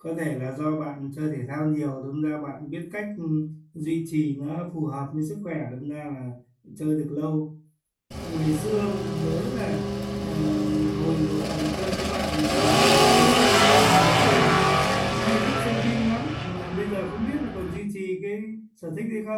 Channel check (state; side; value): identical; both; correlation 1.00